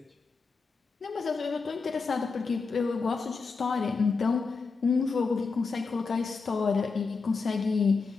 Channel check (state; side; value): quieter; right; 4.6 dB